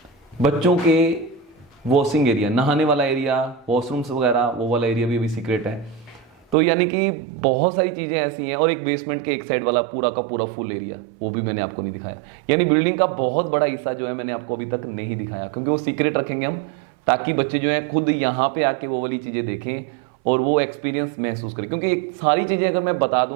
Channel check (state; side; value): drops out; left; at 6.6 s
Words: बच्चों के वॉशिंग एरिया, नहाने वाला एरिया, वॉशरूम्स वगैरह, वो वाला एरिया भी अभी सीक्रेट है। तो यानी कि बहुत सारी चीजें ऐसी हैं। और एक बेसमेंट के एक साइड वाला पूरा का पूरा फुल एरिया, वो भी मैंने आपको नहीं दिखाया। यानी बिल्डिंग का बहुत बड़ा हिस्सा जो है मैंने आपको अभी तक नहीं दिखाया, क्योंकि वो सीक्रेट रखेंगे हम, ताकि बच्चे जो है खुद यहाँ पे आके वो वाली चीजें देखें और वो एक्सपीरियंस महसूस करें। क्योंकि सारी चीजें अगर मैं बता